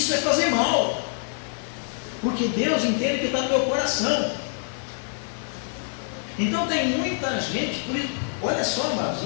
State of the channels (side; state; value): right; silent; 61 dB below the other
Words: é fazer mal, porque Deus entende que está no meu coração. Então tem muita gente, olha só, amados,